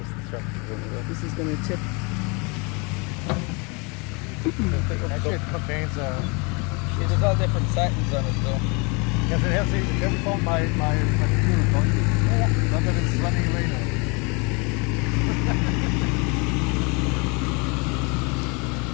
This is going to tip. Actually, it contains See, there's all different settings on it though. yes, it has. Have you found my computer? Don't you? Not that it's running away now.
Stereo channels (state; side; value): quieter; right; 30.7 dB